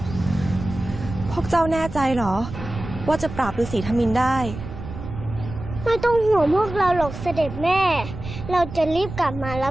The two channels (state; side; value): noise; right; rumble, 10 dB below the sound